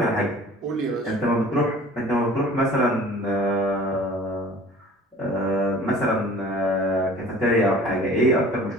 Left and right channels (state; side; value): normal; both; correlation 0.47